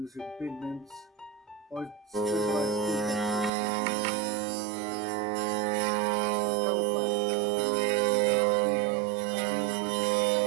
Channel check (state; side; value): drops out; left; at 3.5 s